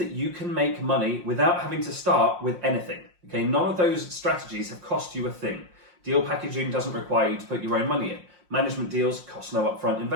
you can make money without having to start with anything. Okay, none of those strategies have cost you a thing. Deal packaging doesn't require you to put your own money in. Management deals cost no upfront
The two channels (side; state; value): left; late; 5.6 ms